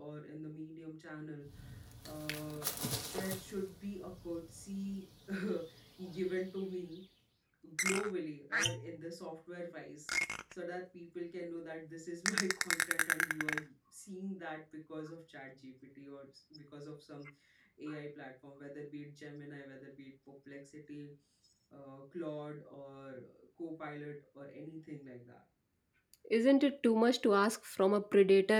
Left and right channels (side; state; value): both; identical; correlation 1.00